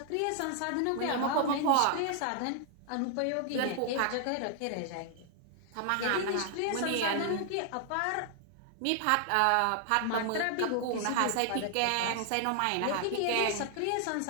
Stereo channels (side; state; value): both; different; correlation 0.00